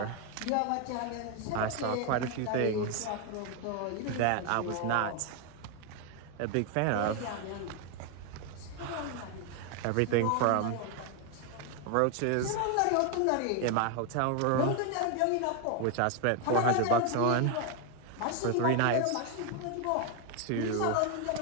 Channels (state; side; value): different; both; correlation 0.01